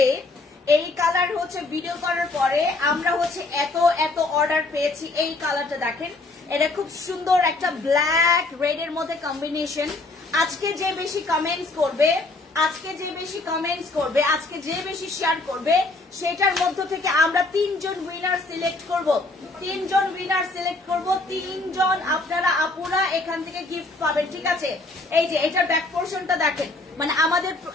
এই কালার হচ্ছে ভিডিও করার পরে আমরা হচ্ছে এত অর্ডার পেয়েছি। এই কালারটা দেখেন, এটা খুব সুন্দর একটা ব্ল্যাক রেড এর মধ্যে কম্বিনেশন। আজকে যে বেশি কমেন্টস করবে, আজকে যে বেশি শেয়ার করবে, সেটার মধ্য থেকে আমরা 3 জন উইনার সিলেক্ট করব। 3 জন উইনার সিলেক্ট করব, 3 জন আপনারা আপুরা এখান থেকে গিফট পাবেন, ঠিক আছে? এই যে এটার ব্যাক পোর্শনটা দেখেন, মানে আমাদের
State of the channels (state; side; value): quieter; right; 3.2 dB